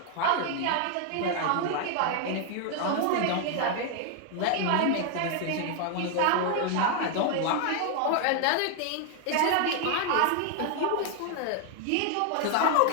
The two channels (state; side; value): different; both; correlation 0.00